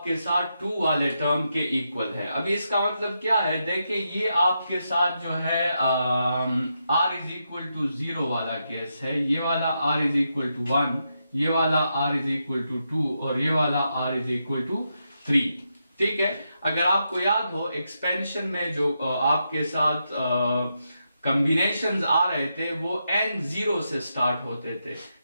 साथ 2 वाले टर्म के इक्वल है। अभी इसका मतलब क्या है, देखिए ये आपके साथ जो है r इज इक्वल टू 0 वाला केस है, ये वाला r इज इक्वल टू 1, ये वाला r इज इक्वल टू 2 और ये वाला r इज इक्वल टू 3। ठीक है, अगर आपको याद हो एक्सपेंशन में जो आपके साथ कॉम्बिनेशंस आ रहे थे वो n0 से स्टार्ट होते थे।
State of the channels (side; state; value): both; inverted; correlation -0.84